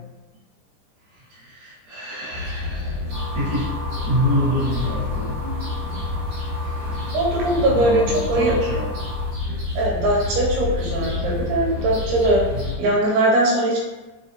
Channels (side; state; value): left; late; 17 ms